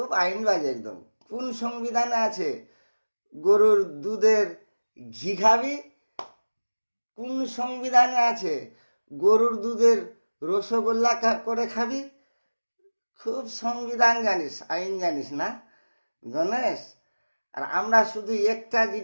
আইনবাজ একদম। কোন সংবিধানে আছে গরুর দুধের ঘি খাবি? কোন সংবিধানে আছে গরুর দুধের রসগোল্লা করে খাবি? খুব সংবিধান জানিস, আইন জানিস না গণেশ। আর আমরা শুধু একটা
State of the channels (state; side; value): inverted; both; correlation -1.00